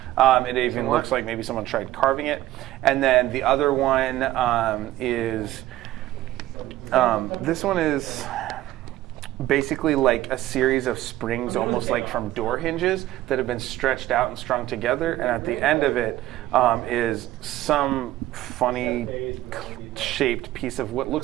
It even looks like maybe someone tried carving it. And then the other one is this one is basically like a series of springs, almost like from door hinges, that have been stretched out and strung together. And at the end of it is some funny shaped piece of what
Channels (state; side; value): quieter; left; 15.1 dB